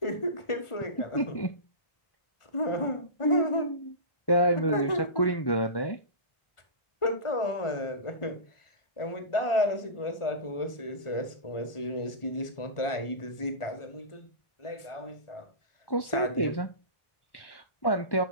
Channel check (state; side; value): late; right; 1.4 ms